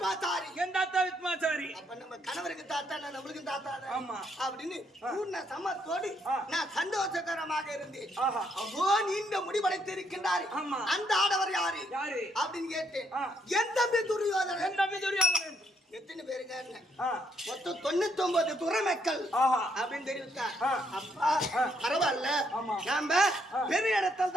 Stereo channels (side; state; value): both; normal; correlation 0.73